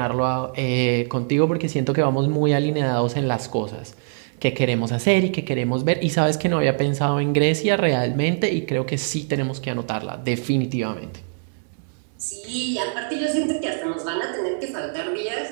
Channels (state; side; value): silent; left; digital silence